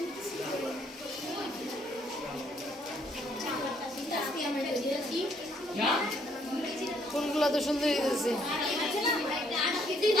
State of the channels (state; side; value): normal; both; correlation 0.68